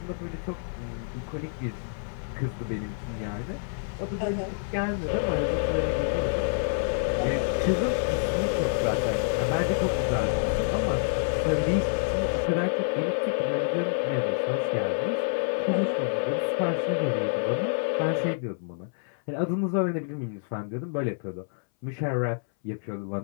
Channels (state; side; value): silent; right; 60 dB below the other